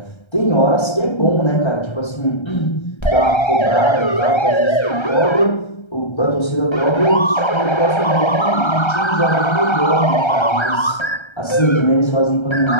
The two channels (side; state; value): right; late; 1.3 ms